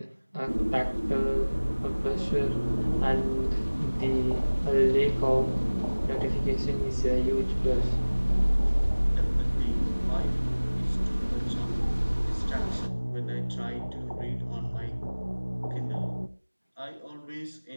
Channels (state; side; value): inverted; both; correlation -1.00